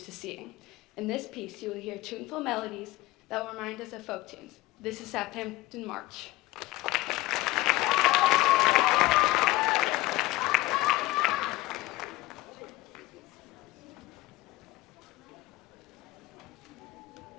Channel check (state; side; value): quieter; right; 19.1 dB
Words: to seeing. In this piece, you will hear tuneful melodies that will remind us of folk tunes. This is Southampton March.